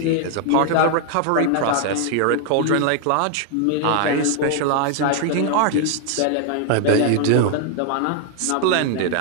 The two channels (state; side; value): different; both; correlation 0.00